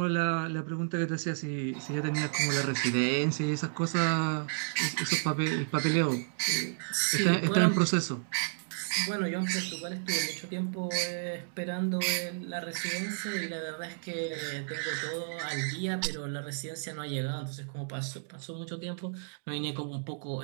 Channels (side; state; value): left; silent; digital silence